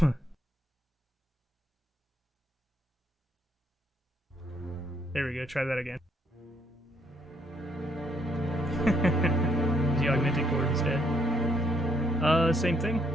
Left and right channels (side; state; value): both; normal; correlation 0.71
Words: There we go, try that again. The augmented chord instead. Same thing.